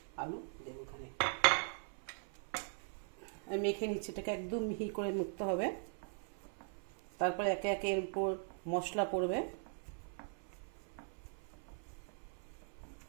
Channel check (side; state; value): left; silent; 51 dB below the other